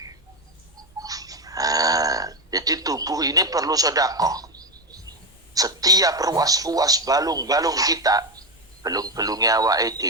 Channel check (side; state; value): both; normal; correlation 0.12